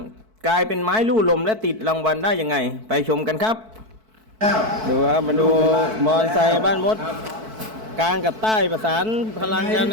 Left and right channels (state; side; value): late; left; 4.6 ms